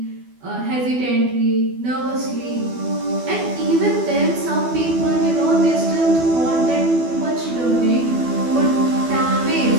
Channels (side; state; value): left; late; 12 ms